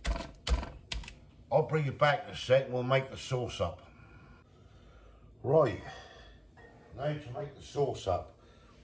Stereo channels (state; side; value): identical; both; correlation 1.00